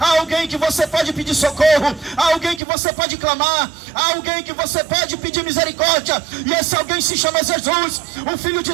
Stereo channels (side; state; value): left; drops out; at 2.6 s